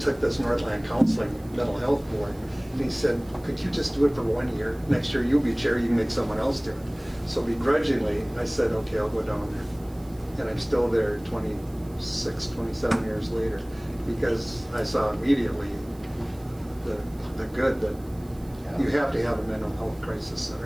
this Northland Counseling mental health board. And he said, could you just do it for 1 year? Next year you'll be chair, you can make someone else do it. So begrudgingly, I said, okay, I'll go down there. And I'm still there 26, 27 years later, because I saw immediately the good that you have to have a mental health crisis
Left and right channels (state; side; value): noise; right; hiss, 26 dB below the sound